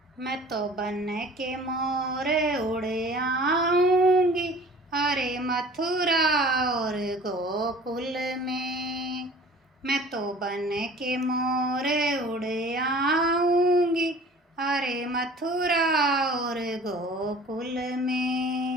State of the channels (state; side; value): normal; both; correlation 0.47